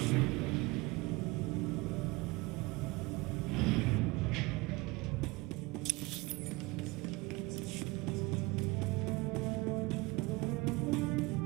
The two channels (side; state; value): left; quieter; 23.2 dB